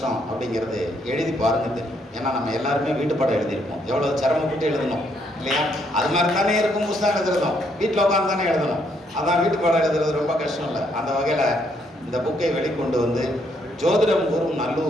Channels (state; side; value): normal; both; correlation 0.72